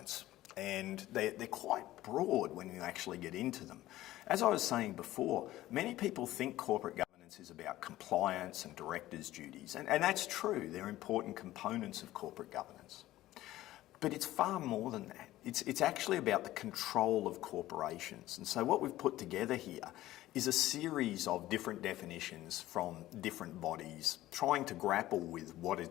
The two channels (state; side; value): quieter; right; 15.5 dB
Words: and they're quite broad when you actually get into them. As I was saying before, many people think corporate governance is about compliance and directors' duties, and that's true. They're important components of corporate governance. But it's far more than that. It's actually about the control of corporations. And so what we've put together here is a series of different definitions from different bodies trying to grapple with